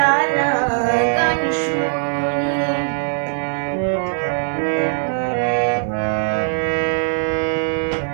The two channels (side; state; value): left; silent; digital silence